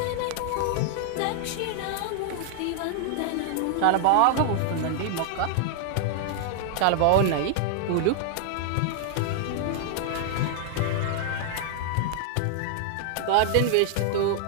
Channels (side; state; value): both; different; correlation -0.01